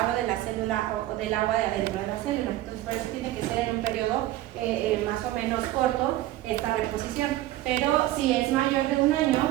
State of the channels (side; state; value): left; quieter; 15.4 dB